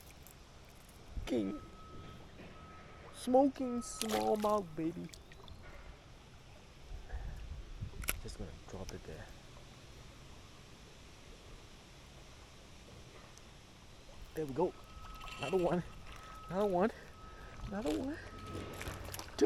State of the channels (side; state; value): both; identical; correlation 1.00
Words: King. Smoking smallmouth, baby. Just gonna drop it there. There we go. Another one. Another one. Another one.